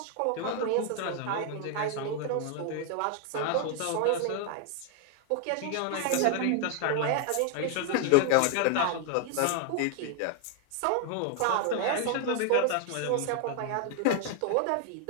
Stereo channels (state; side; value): different; both; correlation 0.00